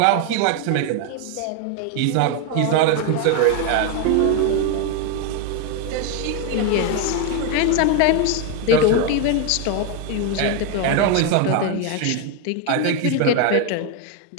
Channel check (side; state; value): both; different; correlation 0.01